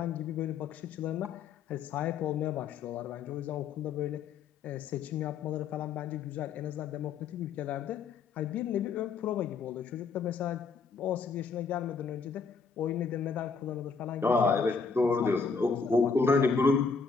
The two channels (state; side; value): quieter; right; 5.1 dB